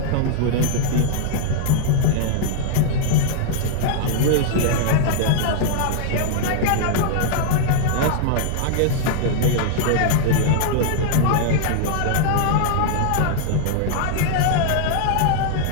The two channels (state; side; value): different; both; correlation 0.00